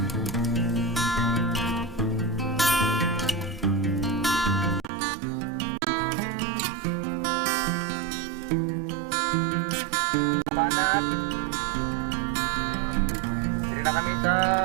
Kabanat. Dili na kami sa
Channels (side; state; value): left; drops out; at 4.9 s